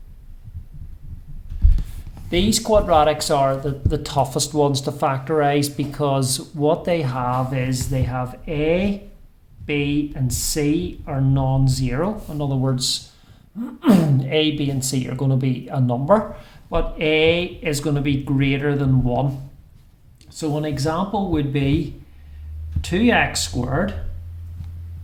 These quadratics are the toughest ones to factorise because what they have is they have A, B and C are non-zero. In other words, A, B and C are going to be a number, but A is going to be greater than 1. So an example would be 2x squared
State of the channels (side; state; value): both; identical; correlation 1.00